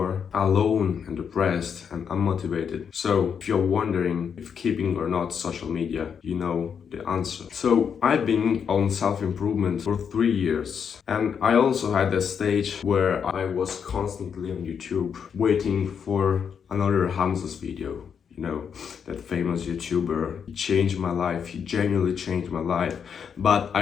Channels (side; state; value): right; quieter; 7.1 dB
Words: alone and depressed and unmotivated. So if you're wondering if keeping or not social media, you know the answer. So I've been on self-improvement for 3 years, and I also had a stage where I was constantly on YouTube waiting for another Hamza's video. You know, that famous YouTuber. He changed my life, he genuinely changed my life, but